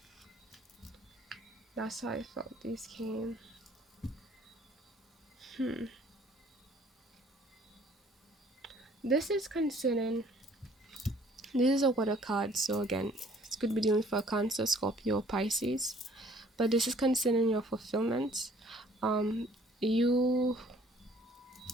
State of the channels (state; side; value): normal; both; correlation 0.57